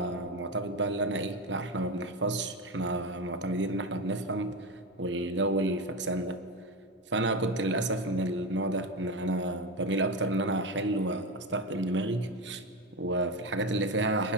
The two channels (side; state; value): both; normal; correlation 0.17